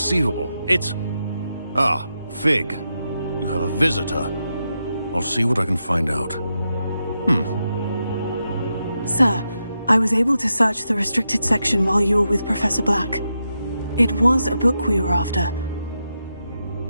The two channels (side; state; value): both; inverted; correlation -0.86